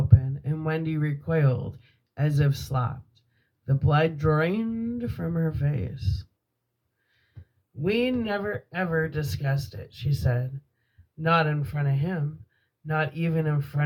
and Wendy recoiled as if slapped. The blood drained from her face. We never ever discussed it, she said. Not in front of him, not even in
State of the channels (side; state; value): both; identical; correlation 1.00